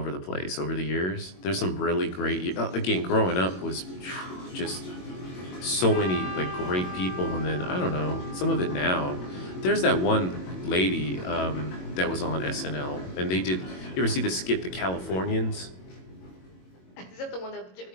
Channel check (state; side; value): late; right; 22 ms